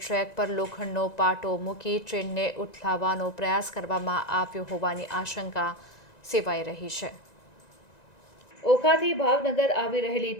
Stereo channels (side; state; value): right; late; 1.9 ms